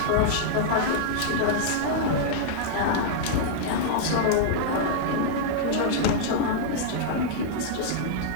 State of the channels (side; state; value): both; different; correlation -0.01